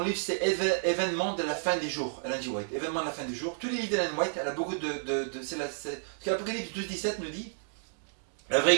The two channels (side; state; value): left; silent; digital silence